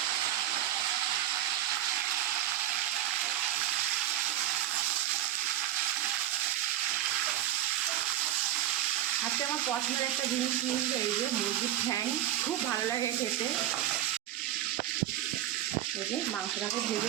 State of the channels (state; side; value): quieter; left; 12.8 dB